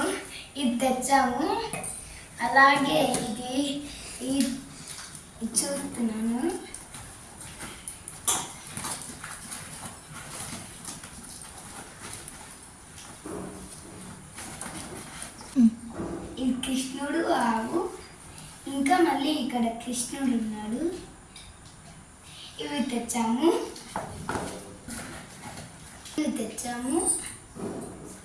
ఇది తెచ్చాము. అలాగే ఇది చూస్తున్నాను. ఇది కృష్ణుడు ఆవు, ఇంకా మళ్ళీ ఇక్కడ కృష్ణుడు ఉన్నాడు. ఇవి తెచ్చాము.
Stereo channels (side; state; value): both; identical; correlation 1.00